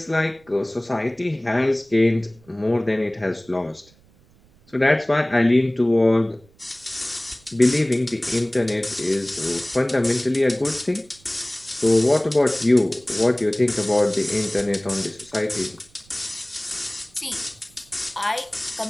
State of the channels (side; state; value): right; noise; rumble, 29 dB below the sound